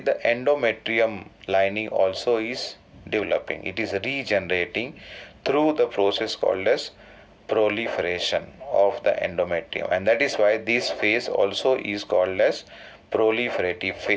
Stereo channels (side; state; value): both; identical; correlation 1.00